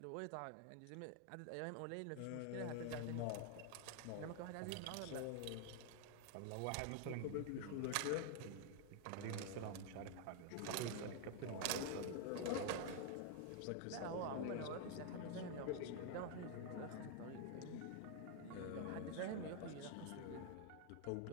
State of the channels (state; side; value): different; both; correlation 0.00